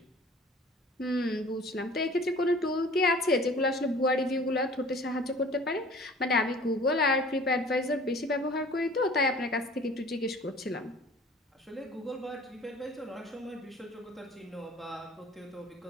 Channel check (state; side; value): normal; both; correlation 0.47